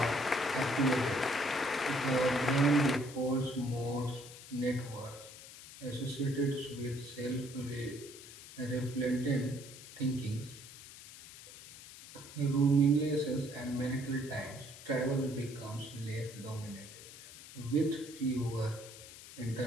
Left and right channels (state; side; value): noise; left; hiss, 16 dB below the sound